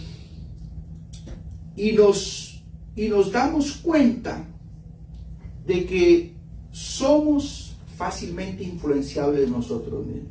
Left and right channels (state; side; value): identical; both; correlation 1.00